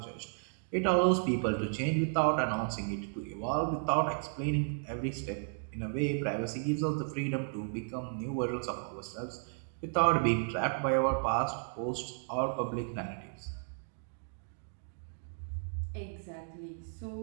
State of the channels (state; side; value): silent; left; digital silence